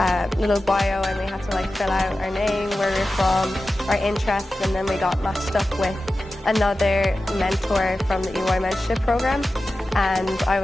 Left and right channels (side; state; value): both; normal; correlation 0.94